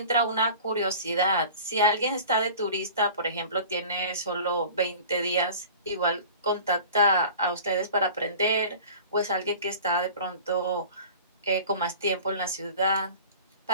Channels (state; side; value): inverted; both; correlation -0.41